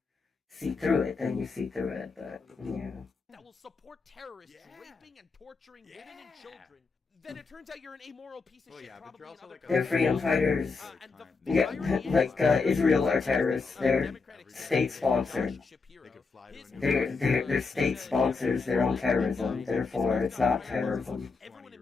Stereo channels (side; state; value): right; quieter; 4.5 dB